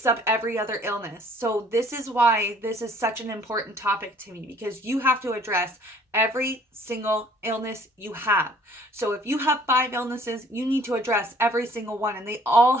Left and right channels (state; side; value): normal; both; correlation 0.57